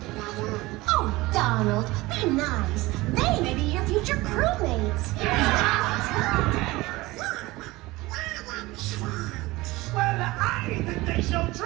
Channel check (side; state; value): left; quieter; 20.3 dB